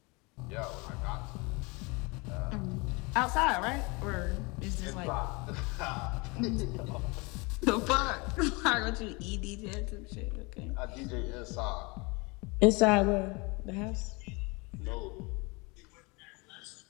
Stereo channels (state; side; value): quieter; right; 27.8 dB